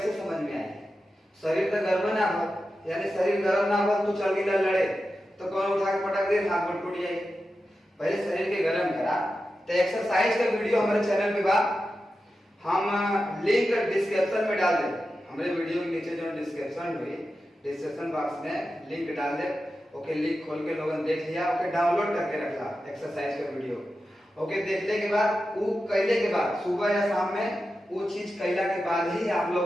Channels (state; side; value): normal; both; correlation 0.91